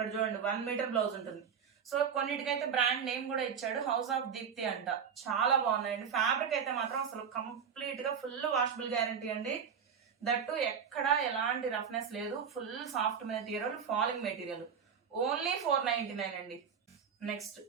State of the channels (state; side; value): quieter; left; 7.1 dB